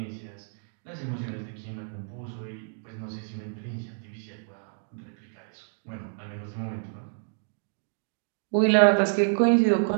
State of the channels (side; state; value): left; silent; digital silence